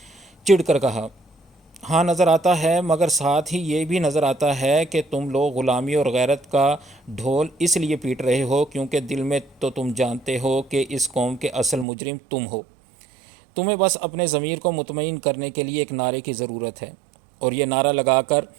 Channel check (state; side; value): drops out; left; at 11.9 s